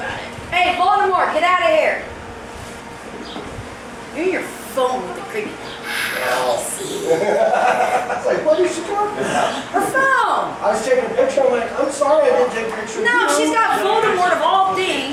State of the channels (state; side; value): identical; both; correlation 1.00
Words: it. hey, Baltimore, get out of here. You're in your phone with the creepy. I was like, what is she talking about? Her phone. I was taking a picture. I'm like, I'm sorry I didn't take a picture. No, she's got Voldemort of all